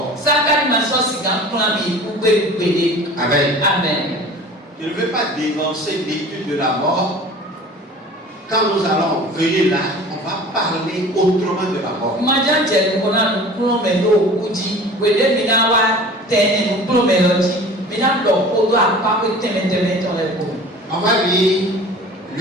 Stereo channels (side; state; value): both; normal; correlation 0.42